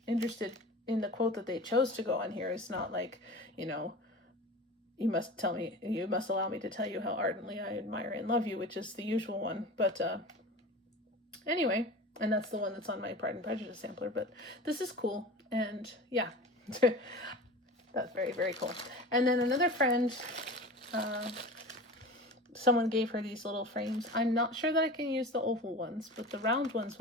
interested in the quote that they chose to go on here. It's not like, you know, you must allow me to tell you how ardently I admire and love you, which is the usual one. But anyway, and that's the one that's on my Pride and Prejudice sampler. But this is cool, and yeah, that's very, very cool. And then another friend, someone gave her these little frames. I'm not sure that I can use the oval ones, but the round ones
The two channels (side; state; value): both; normal; correlation 0.34